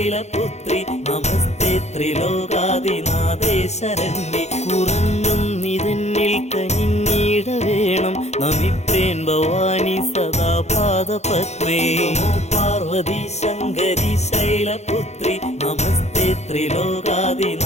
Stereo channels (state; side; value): late; right; 0.32 ms